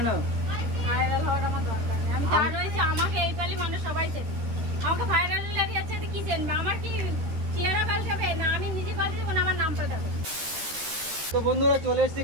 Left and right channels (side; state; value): left; late; 13 ms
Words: ভাইরাল হওয়ার আমার দরকার নেই। আমি যা রয়েছে আমাকে এই পালি মানুষ সবাই চেনে। আমাকে ভাইরাল লাগে আছে কি চেনবে? আমার কি চেহারা পাল্টাবে না আমি নিজে পাল্টাবো না আমার নাম পাল্টাবে? তো বন্ধুরা চলে এসেছি